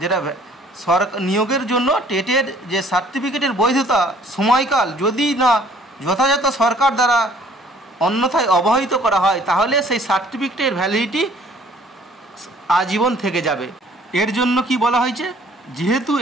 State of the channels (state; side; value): normal; both; correlation 0.57